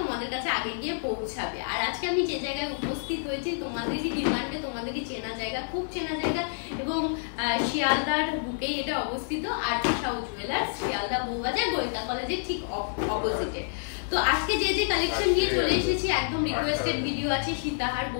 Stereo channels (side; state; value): right; silent; digital silence